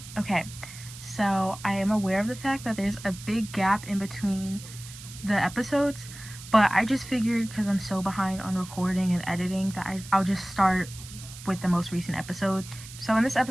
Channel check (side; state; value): right; noise; hiss, 15 dB below the sound